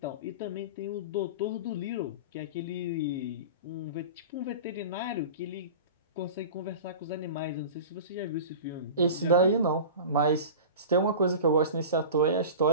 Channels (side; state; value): both; inverted; correlation -0.34